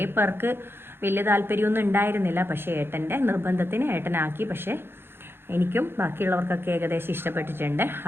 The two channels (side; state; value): left; late; 0.11 ms